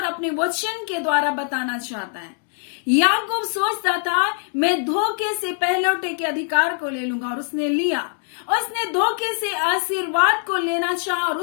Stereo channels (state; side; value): silent; right; 61 dB below the other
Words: अपने वचन के द्वारा बताना चाहता है। याकूब सोचता था मैं धोखे से पहलौठे के अधिकार को ले लूंगा और उसने लिया। उसने धोखे से आशीर्वाद को लेना चाहा और